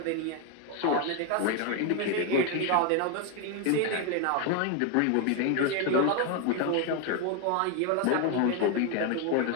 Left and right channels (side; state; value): both; different; correlation 0.01